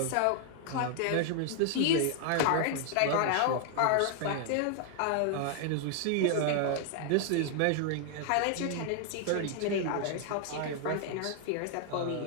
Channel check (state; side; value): different; both; correlation 0.00